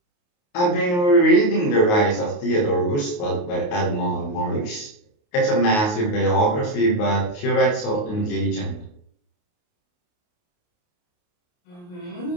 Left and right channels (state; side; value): late; right; 28 ms